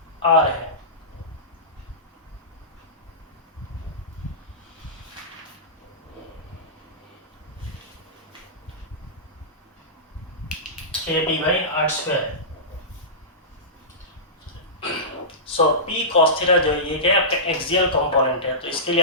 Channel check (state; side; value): normal; both; correlation -0.20